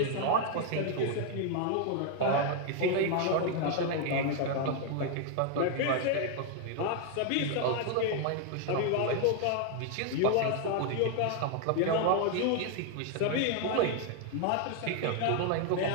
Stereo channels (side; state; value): both; different; correlation 0.01